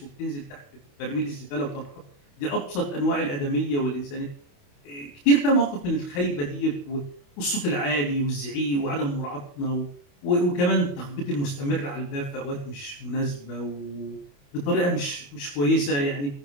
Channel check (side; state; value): right; late; 28 ms